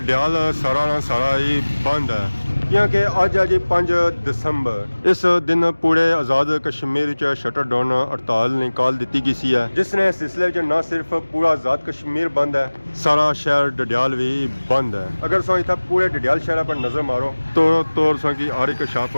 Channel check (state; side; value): inverted; both; correlation -1.00